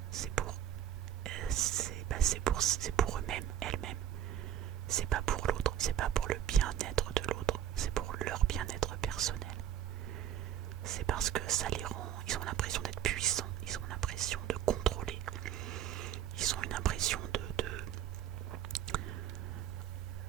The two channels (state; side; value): quieter; left; 10.6 dB